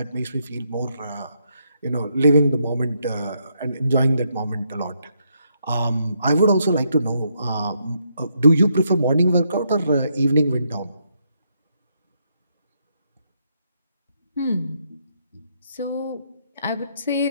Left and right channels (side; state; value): both; inverted; correlation -0.77